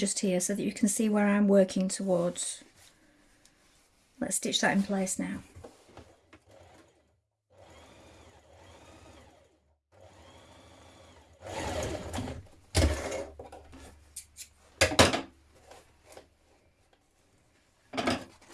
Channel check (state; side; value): identical; both; correlation 1.00